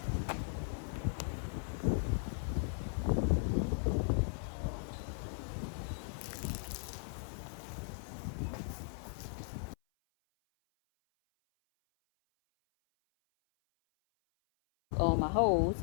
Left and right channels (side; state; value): right; silent; 53 dB below the other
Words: On my hose,